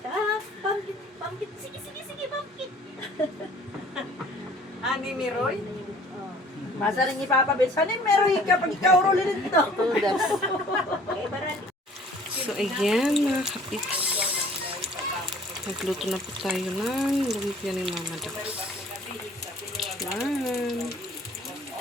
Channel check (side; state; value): both; normal; correlation 0.53